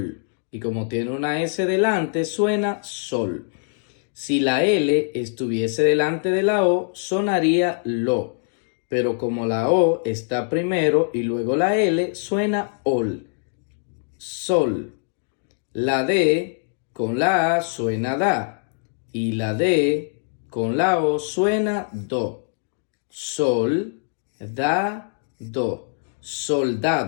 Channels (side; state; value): right; silent; digital silence